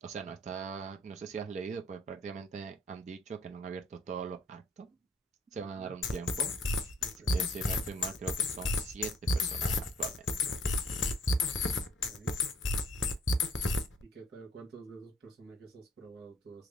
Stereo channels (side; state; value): both; normal; correlation 0.63